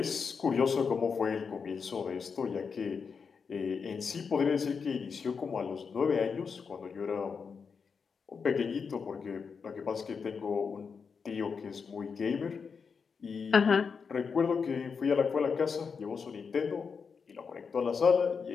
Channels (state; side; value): quieter; right; 5.7 dB